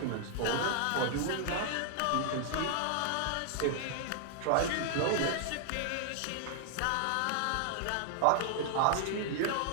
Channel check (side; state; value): both; different; correlation 0.00